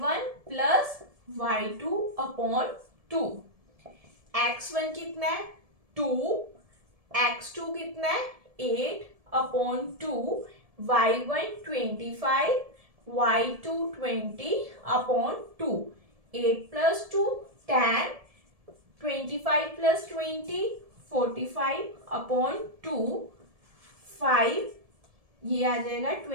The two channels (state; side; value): late; left; 1.7 ms